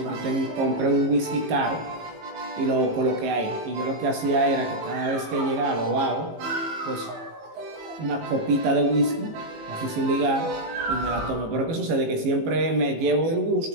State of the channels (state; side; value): late; left; 18 ms